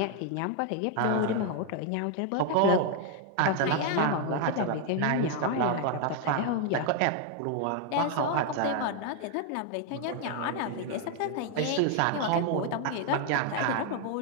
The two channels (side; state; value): both; different; correlation 0.00